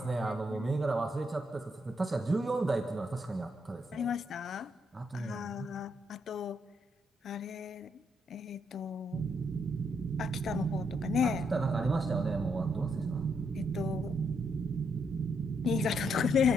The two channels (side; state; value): both; normal; correlation 0.76